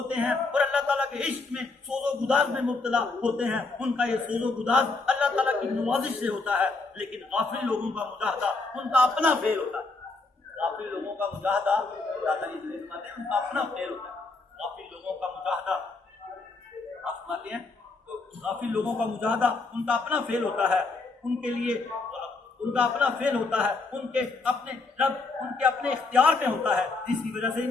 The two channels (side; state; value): right; quieter; 3.8 dB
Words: ہیں اور اللہ تعالیٰ کے عشق میں سوز و گداز میں مبتلا ہوتے ہیں، ان کا یہ سوز و گداز اللہ تعالیٰ کی نوازش سے ہوتا ہے۔ لیکن غافل لوگوں کا مجاہدہ ان کا اپنا فعل ہوتا ہے، غافل لوگوں کا مجاہدہ اللہ تعالیٰ فرماتے ہیں ان کا اپنا فعل ہوتا ہے۔ غافل لوگوں کا مجاہدہ آپ فرماتے ہیں غافل لوگوں کا مجاہدہ ان کا اپنا فعل ہوتا ہے، ان کے لیے ان کا اپنا فعل ہوتا ہے، ان کے اپنے رب ان کے اپنے اختیار میں ہوتا ہے، جس کی وجہ سے